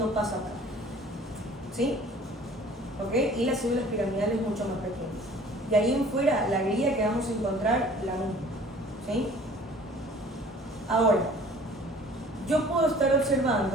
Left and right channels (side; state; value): both; normal; correlation 0.50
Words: pasa acá, ¿sí? ¿Ok? Y las células piramidales mucho más pequeñas. Y ahí en fuera, la guía que vamos a encontrar, la misma, ¿sí? Ahora, yo puedo estar